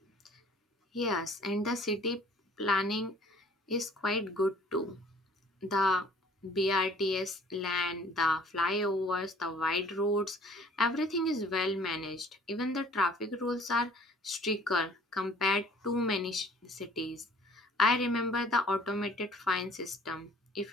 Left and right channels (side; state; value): both; normal; correlation 0.54